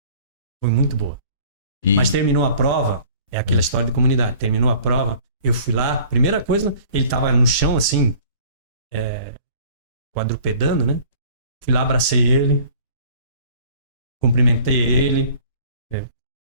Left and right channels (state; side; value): inverted; both; correlation -0.49